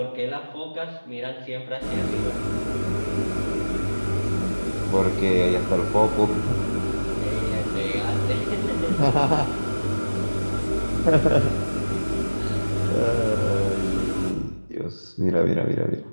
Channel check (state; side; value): inverted; both; correlation -1.00